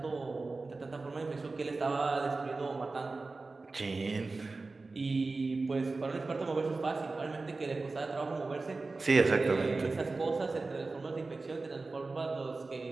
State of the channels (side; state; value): left; quieter; 3.6 dB